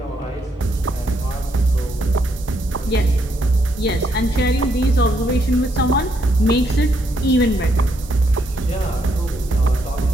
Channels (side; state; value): both; normal; correlation 0.75